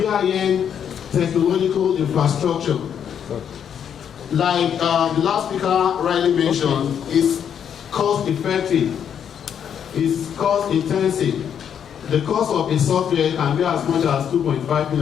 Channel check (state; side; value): quieter; right; 8.4 dB